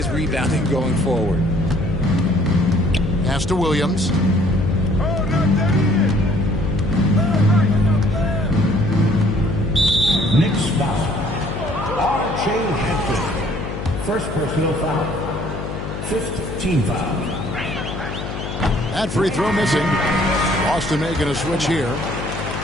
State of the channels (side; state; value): left; noise; hum, 7 dB below the sound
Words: rebounding going forward. Pass to Williams. Knicks foul. R.J. Hampton. First personal foul. 5th team foul. That free throw missing. Boston making a switch here.